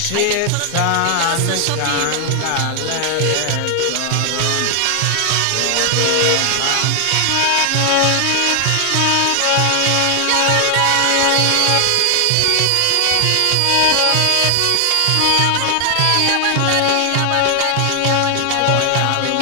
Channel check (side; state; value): both; different; correlation 0.00